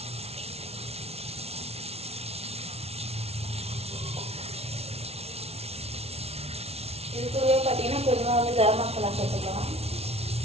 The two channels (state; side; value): late; left; 0.30 ms